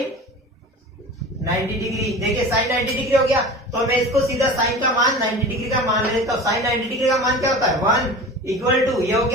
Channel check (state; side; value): normal; both; correlation 0.35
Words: 90 डिग्री, देखिए साइन 90 डिग्री हो गया तो मैं इसको सीधा साइन का मान 90 डिग्री का मान ले लेता हूं। साइन 90 डिग्री का मान क्या होता है 1 इक्वल टू, ये हो